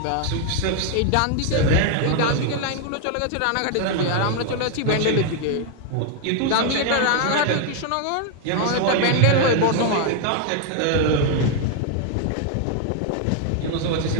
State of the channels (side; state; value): both; different; correlation 0.00